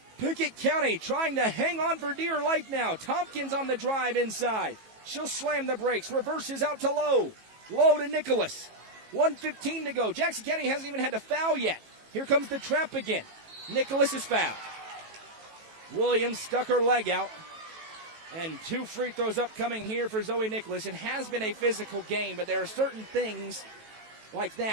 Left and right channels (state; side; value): late; left; 18 ms